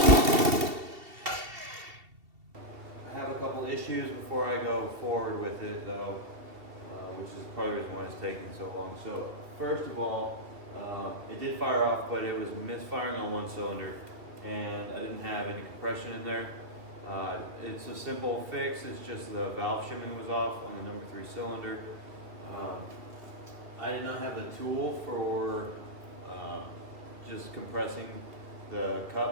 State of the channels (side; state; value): left; late; 2.7 ms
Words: I have a couple issues before I go forward with it though, which is part of the reason why it's taking so long. So first of all, it did fire off, but it was misfiring on one cylinder and I didn't have any compression in there. It's a simple fix. It's just the valve shimming was off on the number 3 cylinder. I did not have the tool for just compressing the